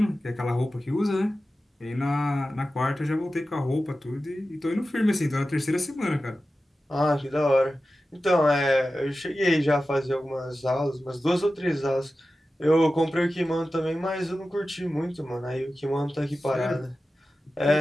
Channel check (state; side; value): normal; both; correlation 0.94